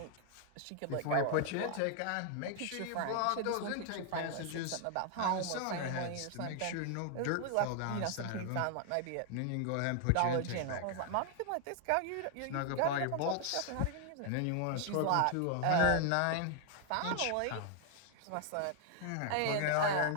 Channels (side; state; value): both; different; correlation 0.00